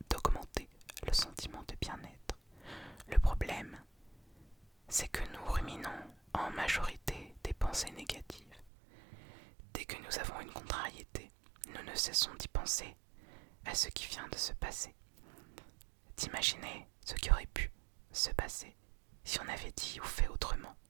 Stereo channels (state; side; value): drops out; left; at 8.7 s